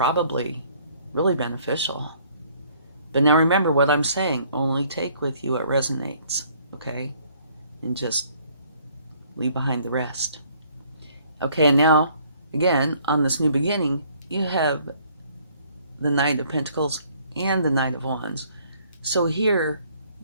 really beneficial. But now remember what I'm saying, only take with you what resonates, okay? And just leave behind the rest. Okay, and now, again, on this new beginning, you have the Knight of Pentacles and the Knight of Wands. So here,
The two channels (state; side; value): inverted; both; correlation -0.62